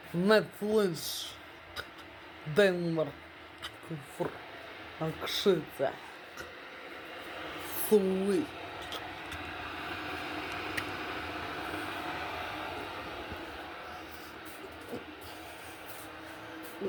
Netflix, Denmark, Akszyca, Sweet.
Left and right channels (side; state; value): both; identical; correlation 1.00